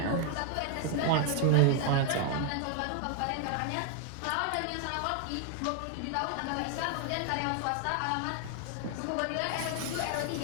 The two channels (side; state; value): both; different; correlation 0.00